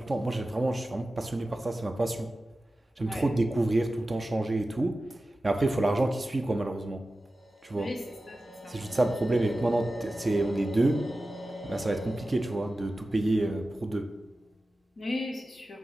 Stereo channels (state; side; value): normal; both; correlation 0.94